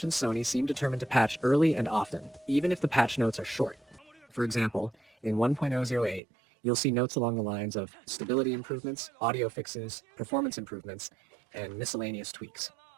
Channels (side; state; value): left; drops out; at 6.2 s